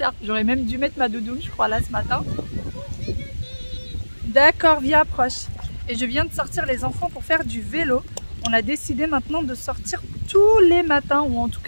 j'aurais même dû mettre ma doudoune je crois là ce matin. D'accord, viens approche. Et je viens de sortir les enfants pour faire du vélo. On a décidé maintenant de sortir tous les matins ou en tout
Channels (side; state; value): both; inverted; correlation -1.00